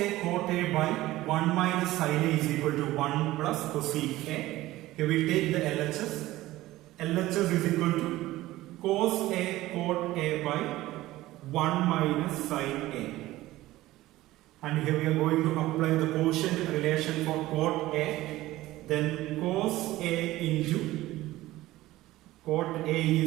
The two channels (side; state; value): left; quieter; 16.8 dB